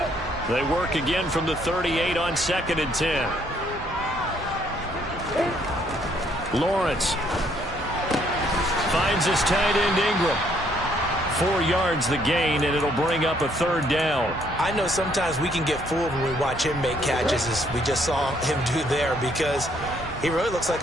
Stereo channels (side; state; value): both; normal; correlation 0.68